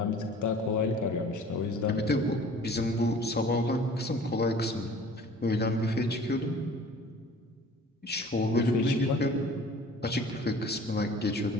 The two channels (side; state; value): both; normal; correlation 0.47